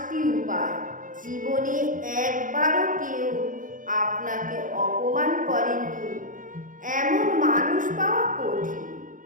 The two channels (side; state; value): left; late; 0.38 ms